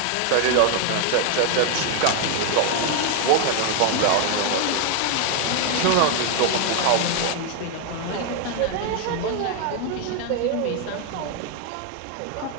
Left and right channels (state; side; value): different; both; correlation 0.00